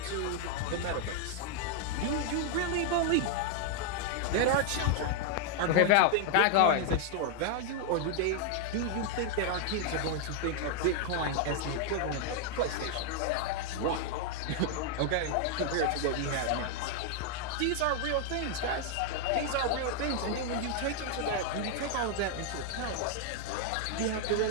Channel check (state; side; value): different; both; correlation 0.00